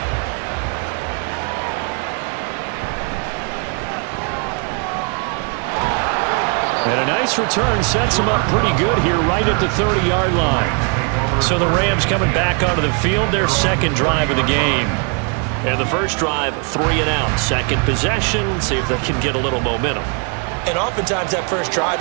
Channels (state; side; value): quieter; left; 36.5 dB